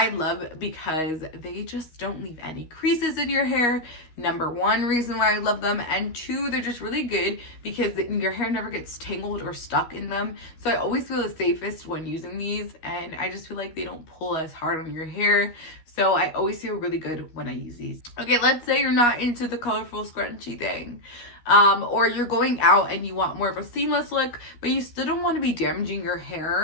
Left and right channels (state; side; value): late; right; 13 ms